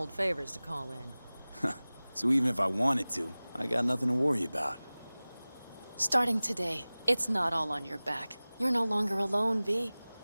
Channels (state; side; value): inverted; both; correlation -0.99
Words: favors to call in. So even if I wanted to, I got nothing to worry about. Starting today, it's not all on your back. You're no longer alone, V.